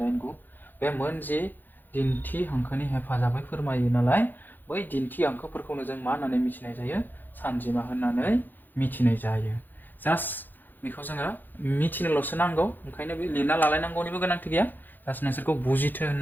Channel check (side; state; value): right; late; 0.088 ms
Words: 8 9 बे मोनजि दिन्थि हांखोनि हेफाजाबै फोरमायो नालाय बै दिन्थि हांखोफोरखौनो जों मा होननानै मिथिनाय जायो सानजिमा होननानै मिथिनाय जायो जास्ट बेखौ जोङो मिथिनोल'सो नांगौ ओंखायनो बे लिरना लालायनांगौनिबो गोनांथि गैया जास्ट नोंसोरखौ बुजिथो